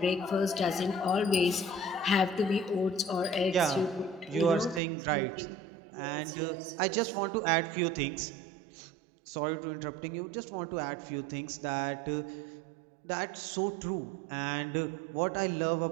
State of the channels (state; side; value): drops out; left; at 4.8 s